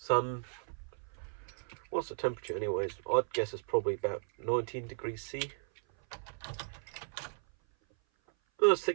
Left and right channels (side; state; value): left; silent; 54 dB below the other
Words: What's the temperature anyways? I'd guess it's probably about 19 degrees C.